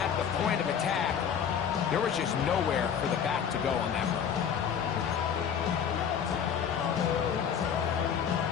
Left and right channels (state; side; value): quieter; right; 7.8 dB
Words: the point of attack, there was just nowhere for the back to go on that run.